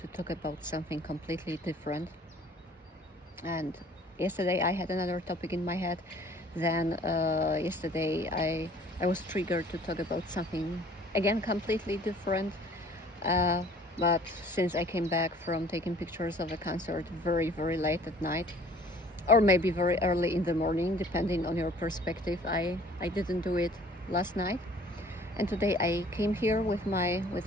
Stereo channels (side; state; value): both; normal; correlation 0.53